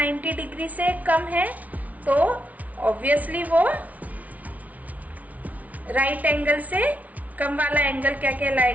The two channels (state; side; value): late; left; 0.071 ms